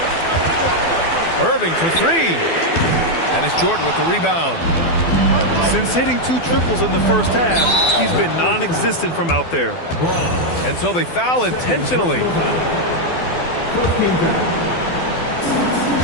Irving for 3. And it's Jordan with the rebound. Since hitting 2 triples in the first half, he's been non-existent from out there. And so they foul intentionally.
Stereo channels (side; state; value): right; late; 12 ms